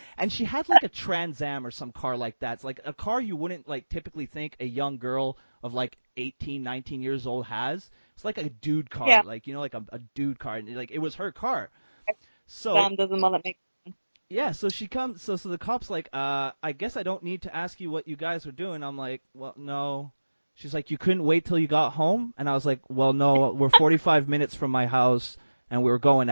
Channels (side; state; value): both; inverted; correlation -1.00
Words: And she had like a Trans Am or some car like that. It's like a car you wouldn't like typically think a young girl of like 18, 19 years old has. It's like a dude car, Yeah. like, you know, like a dude car, and like it was her car. So Sam doesn't want to make. yeah, so she comes, so the cop's like, I guess I don't need to ask you what you guys are doing. I'm like, well, no. She's like, you couldn't wait till you got home? And I was like, well, no, we're 45 minutes from my house, and we were going